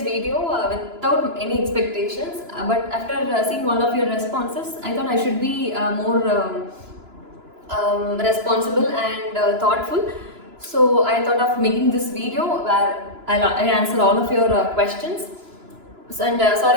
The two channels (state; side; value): late; left; 2.9 ms